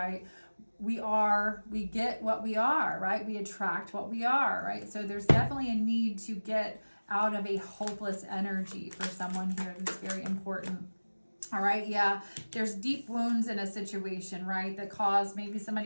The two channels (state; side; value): inverted; both; correlation -1.00